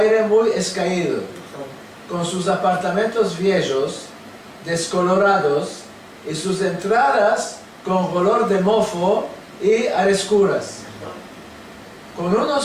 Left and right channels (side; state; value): both; identical; correlation 1.00